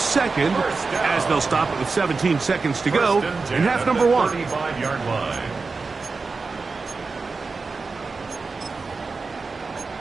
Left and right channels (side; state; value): left; quieter; 4.3 dB